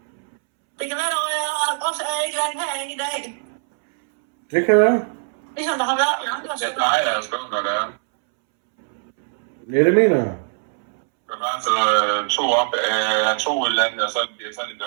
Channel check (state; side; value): silent; left; 65 dB below the other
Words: Det kan være, at jeg også er et eller andet herinde i dag. Det kan være. Ligesom der har været i andre Jeg steder. plejer at skrive, når det er. Ja, det mener jeg. Der var altså to op af to i landet, og så bliver det sådan en